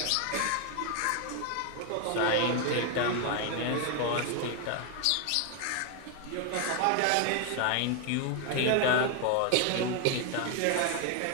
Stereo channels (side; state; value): both; different; correlation 0.00